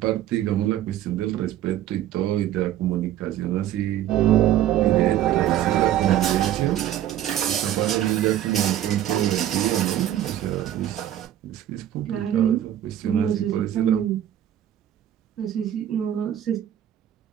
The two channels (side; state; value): left; quieter; 11.8 dB